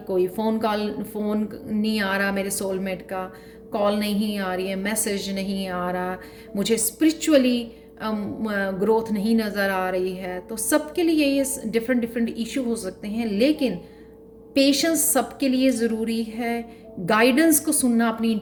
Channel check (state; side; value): identical; both; correlation 1.00